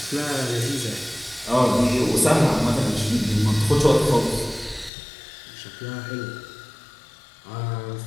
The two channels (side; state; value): right; drops out; at 4.9 s